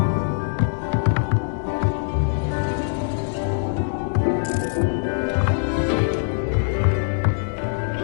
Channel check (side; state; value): right; silent; digital silence